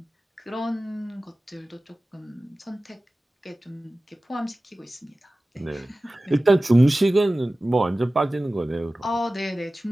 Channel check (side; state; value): both; normal; correlation 0.96